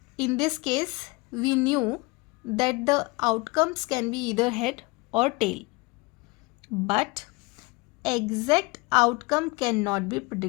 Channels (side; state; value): right; quieter; 25.1 dB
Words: In this case, we knew that the outcomes can be either head or tail, but exact outcome cannot be